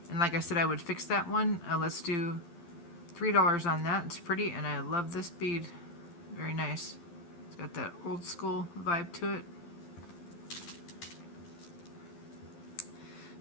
And like I said, I would fix that one. Let's do $3 on that. It's pretty, and I love this bead. Very nice. It's got that old school vibe to it.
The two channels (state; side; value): late; right; 12 ms